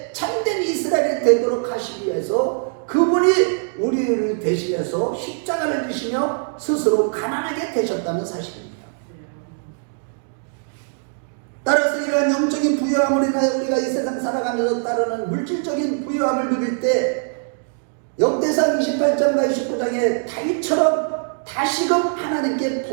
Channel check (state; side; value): silent; left; digital silence